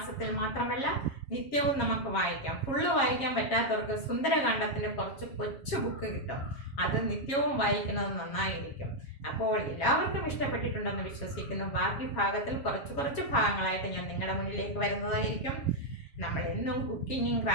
മാത്രമല്ല, നിത്യവും നമുക്ക് വായിക്കാം. ഫുള്ള് വായിക്കാൻ പറ്റാത്തവർക്ക് സുന്ദരകാന്ഡത്തിൻ്റെ കുറച്ച് കൊച്ചു ബുക്ക് കിട്ടും, അത് നിത്യവും വായിക്കുന്നത് നന്നായിരിക്കും. അപ്പോൾ എല്ലാവർക്കും ഇഷ്ടപ്പെട്ടിട്ടുണ്ടെന്ന് വിശ്വസിക്കുന്നു. ബാക്കി ഭാഗത്തിൽ കുറച്ച് ഭാഗങ്ങളായിട്ട് ഞാൻ നിങ്ങളുടെ മുന്നിലേക്ക് വരുന്നതായിരിക്കും. നമ്മൾ എന്നും കുക്കിങ്ങും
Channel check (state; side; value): late; right; 7.3 ms